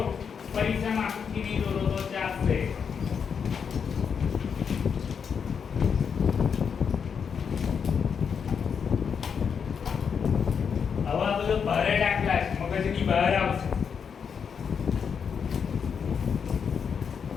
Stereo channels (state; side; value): quieter; right; 6.7 dB